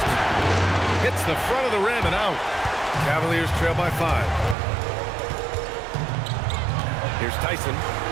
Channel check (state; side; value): drops out; left; at 4.5 s